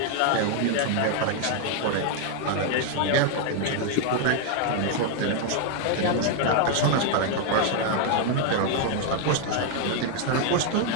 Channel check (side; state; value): both; different; correlation 0.01